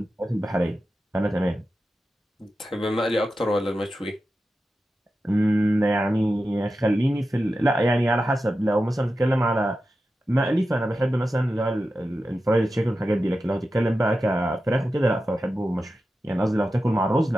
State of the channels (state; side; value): normal; both; correlation 0.92